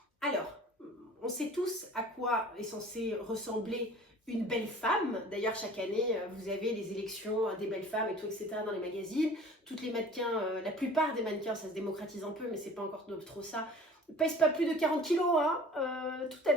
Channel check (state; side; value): normal; both; correlation 0.45